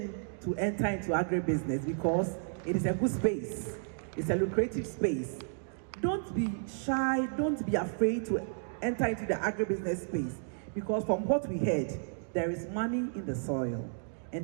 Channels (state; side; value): silent; left; digital silence